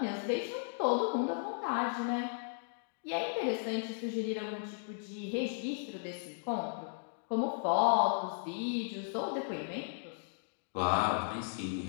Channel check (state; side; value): silent; right; digital silence